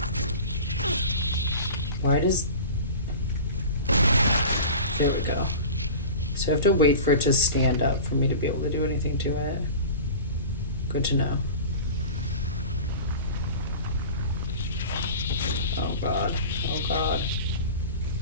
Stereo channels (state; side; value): inverted; both; correlation -0.35